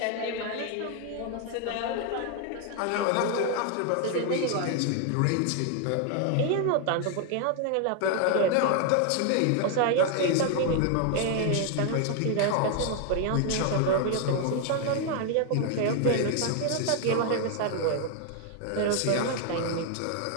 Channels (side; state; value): both; different; correlation 0.00